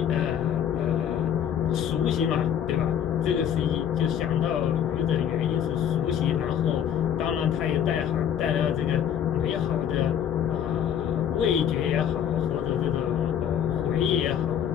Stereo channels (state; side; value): quieter; right; 9.2 dB